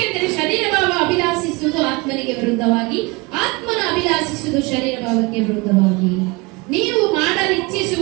ಶರೀರ ಭಾವ ಅಭಿಲಾಷಿಸುವುದು ಆತ್ಮನಿಗೆ ವಿರುದ್ಧವಾಗಿ, ಆತ್ಮನ ಅಭಿಲಾಷಿಸುವುದು ಶರೀರ ಭಾವಕ್ಕೆ ವಿರುದ್ಧವಾಗಿ. ನೀವು ಮಾಡಲು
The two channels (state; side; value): quieter; left; 25.6 dB